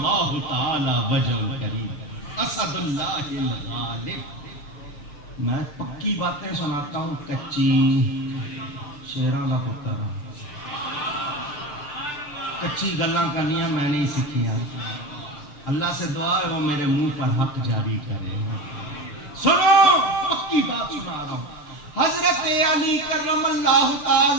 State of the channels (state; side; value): late; right; 6.7 ms